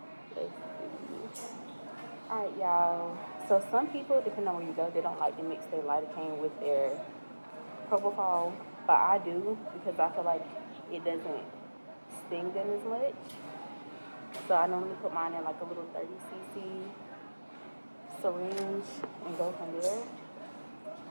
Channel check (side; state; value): both; inverted; correlation -1.00